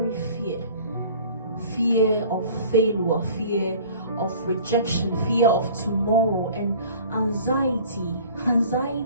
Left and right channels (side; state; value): both; inverted; correlation -0.47